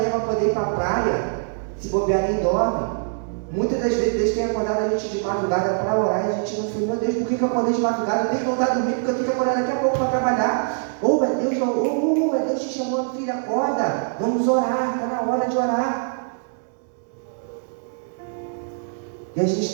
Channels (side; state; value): left; silent; 63 dB below the other